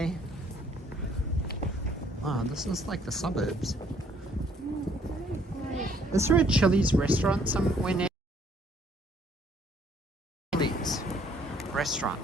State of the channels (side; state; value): both; normal; correlation 0.63